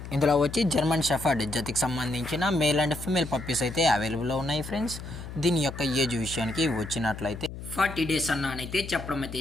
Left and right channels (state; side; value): noise; left; hum, 10 dB below the sound